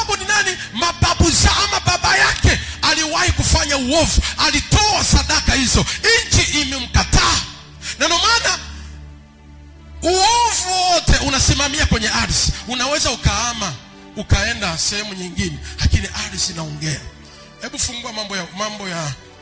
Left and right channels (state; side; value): identical; both; correlation 1.00